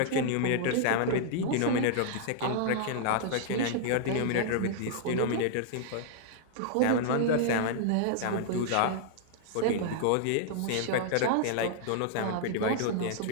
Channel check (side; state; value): both; different; correlation -0.01